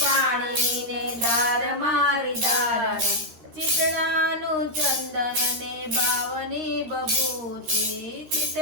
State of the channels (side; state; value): left; late; 13 ms